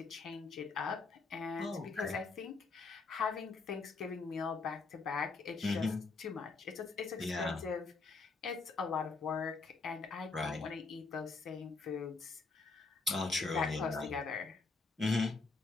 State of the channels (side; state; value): right; quieter; 4.2 dB